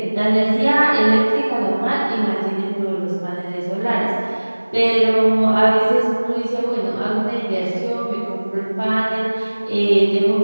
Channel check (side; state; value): both; inverted; correlation -1.00